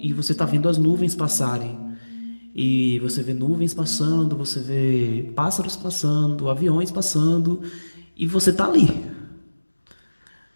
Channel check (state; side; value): inverted; both; correlation -1.00